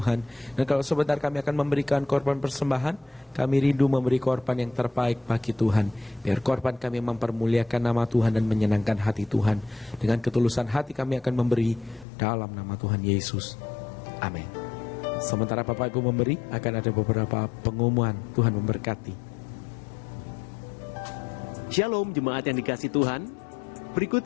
Dan kalau sebentar kami akan memberikan korban persembahan, kami rindu memberi korban yang terbaik bagi Tuhan. Biar korban kami mempermuliakan nama Tuhan dan menyenangkan hati Tuhan. Dengan ketulusan hati kami akan memberi dalam nama Tuhan Yesus. Amin. Sementara Bapak Ibu memberi, akan ada beberapa pengumuman. Tuhan memberkati. Shalom jemaat yang dikasih Tuhan. Berikut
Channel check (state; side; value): drops out; right; at 12.1 s